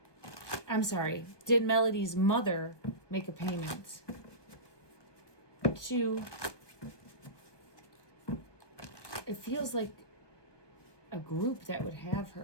I'm sorry, did Melodee's mother make a payment to, it feels like a group that would have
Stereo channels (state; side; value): late; right; 1.2 ms